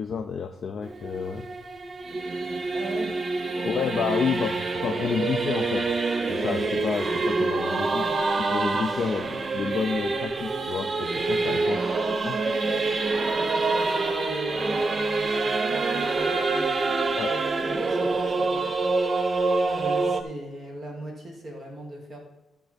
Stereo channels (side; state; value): both; normal; correlation 0.83